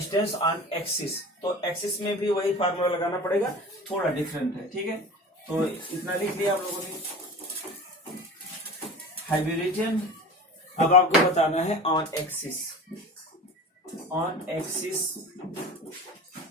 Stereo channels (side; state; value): both; normal; correlation 0.35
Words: on axis, तो एक्सिस में भी वही फार्मूला लगाना पड़ेगा, थोड़ा डिफरेंट है, ठीक है। तो इतना लिख लिया आप लोगों ने, हाइब्रिजन। अब आपको बताना है ऑन एक्सिस, ऑन एक्सिस,